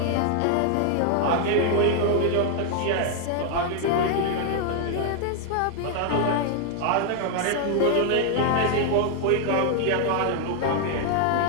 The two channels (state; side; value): different; both; correlation 0.00